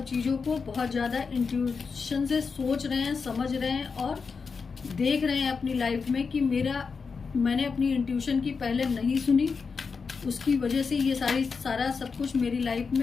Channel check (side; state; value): right; quieter; 5.2 dB